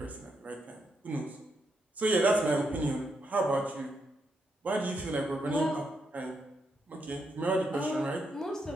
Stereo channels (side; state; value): both; normal; correlation 0.80